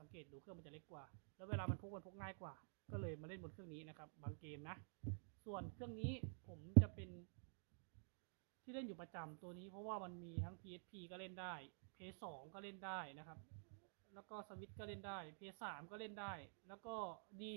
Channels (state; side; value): silent; left; digital silence